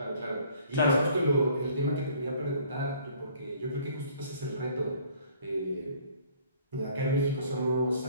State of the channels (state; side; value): inverted; both; correlation -0.56